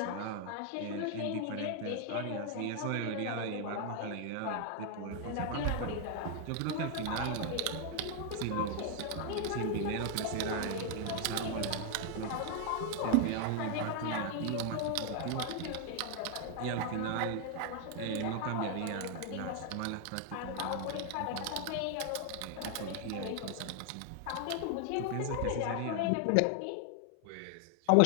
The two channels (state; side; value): different; both; correlation 0.00